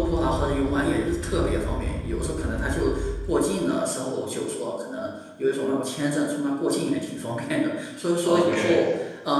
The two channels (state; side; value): identical; both; correlation 1.00